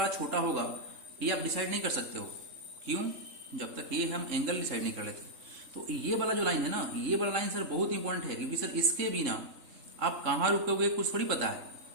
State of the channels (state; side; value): late; left; 3.6 ms